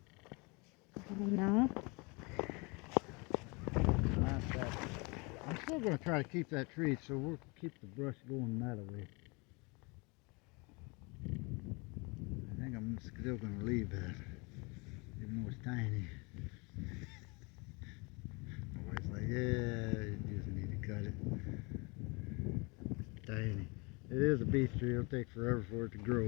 No. Not that. I'm still going to try to keep that tree, so we'll keep the brush going that way. I think I'm I'm still gonna leave that, even though it's tiny. My wife's like, yeah, you just need to cut it. It's tiny. It is a beech tree. It'll take forever for it to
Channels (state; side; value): quieter; right; 28.8 dB